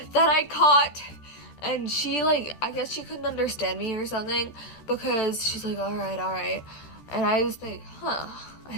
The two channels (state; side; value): late; right; 14 ms